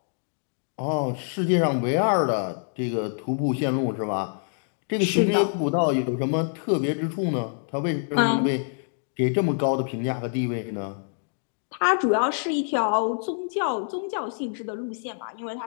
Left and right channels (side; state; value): right; silent; digital silence